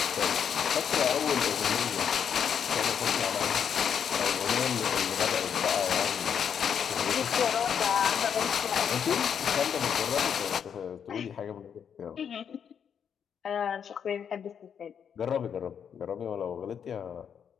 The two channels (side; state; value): right; quieter; 7.8 dB